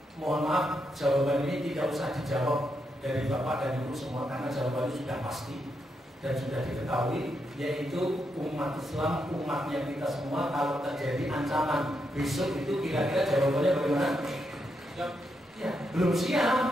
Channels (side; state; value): both; normal; correlation 0.82